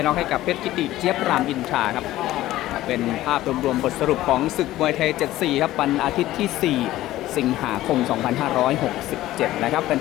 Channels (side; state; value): right; quieter; 15.3 dB